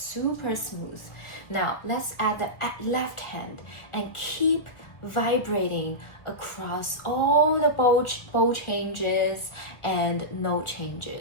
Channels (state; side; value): late; right; 1.6 ms